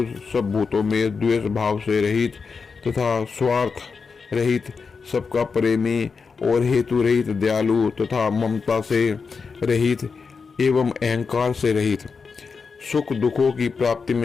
सब भूतों में द्वेष भाव से रहित तथा स्वार्थ रहित, सबका प्रेमी और हेतु रहित, दयालु तथा ममता से रहित एवं अहंकार से रहित, सुख दुखों की प्राप्ति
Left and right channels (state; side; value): quieter; right; 5.2 dB